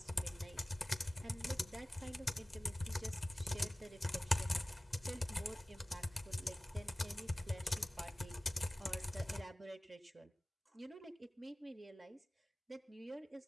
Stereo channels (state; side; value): normal; both; correlation 0.97